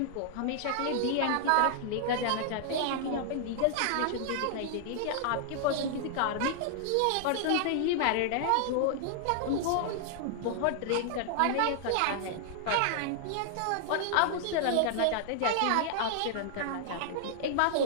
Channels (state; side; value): different; both; correlation -0.01